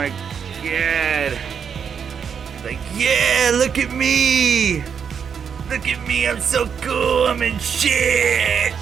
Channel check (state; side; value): quieter; left; 7.1 dB